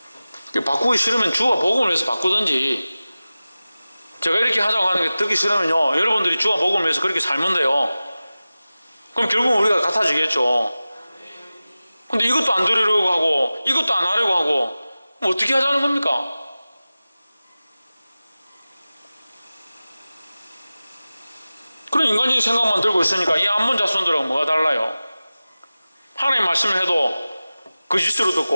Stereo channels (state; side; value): inverted; both; correlation -0.97